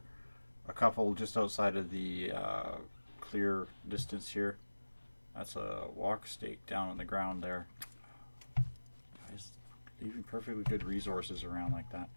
a couple just outside of the clear distance here. That's a walk stake down on the ground there. Guys, leaving perfectly good resources around like that.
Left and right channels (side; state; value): both; inverted; correlation -1.00